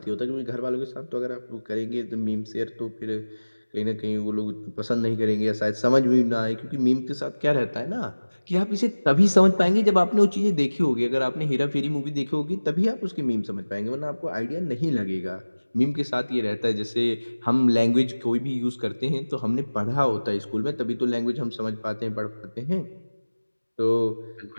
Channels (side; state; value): both; inverted; correlation -1.00